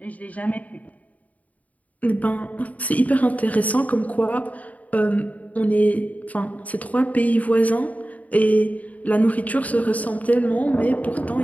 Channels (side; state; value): right; late; 0.072 ms